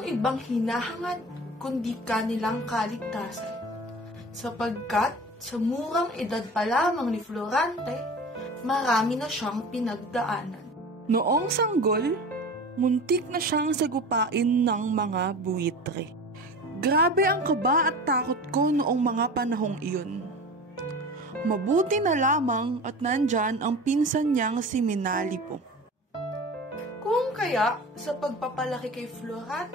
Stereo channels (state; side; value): normal; both; correlation 0.36